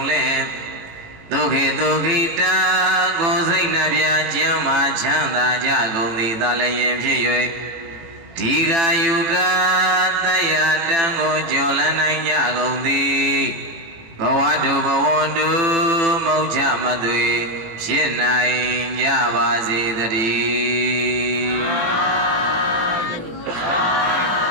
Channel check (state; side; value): late; left; 18 ms